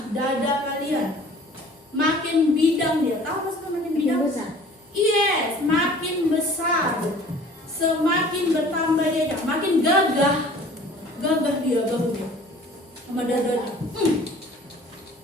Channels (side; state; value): both; normal; correlation 0.49